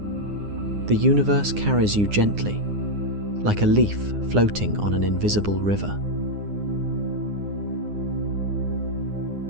The universe carries you gently, like a leaf floating on an invisible river.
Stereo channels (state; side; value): late; left; 9.7 ms